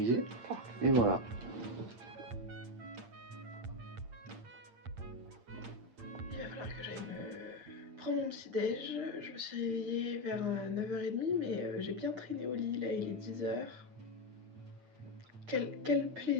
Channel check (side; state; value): left; late; 8.7 ms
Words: Et voilà. Il va falloir que j'aille me prendre mon petit déj. Je me suis réveillée vers 9h30 mais j'ai bien traîné au lit, là il est 10h. Quel